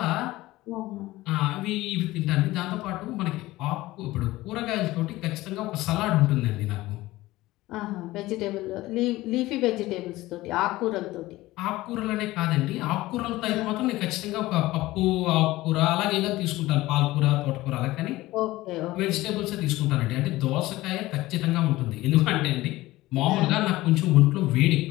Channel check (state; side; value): quieter; right; 18.0 dB